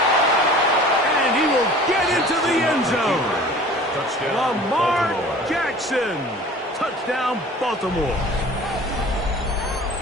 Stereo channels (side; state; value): both; normal; correlation 0.45